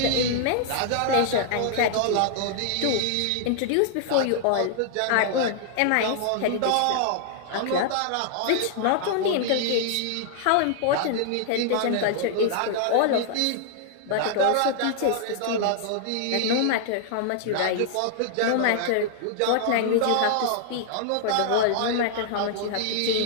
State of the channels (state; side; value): different; both; correlation -0.01